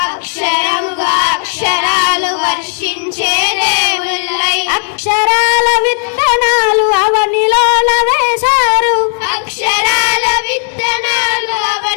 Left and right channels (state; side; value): silent; right; 72 dB below the other